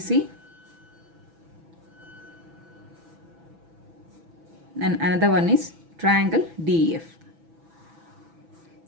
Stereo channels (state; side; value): late; left; 6.1 ms